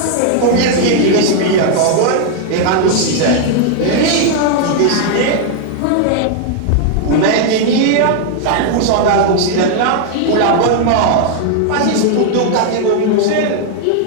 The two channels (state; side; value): different; both; correlation 0.00